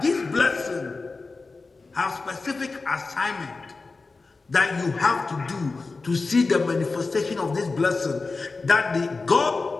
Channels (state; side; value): quieter; right; 3.9 dB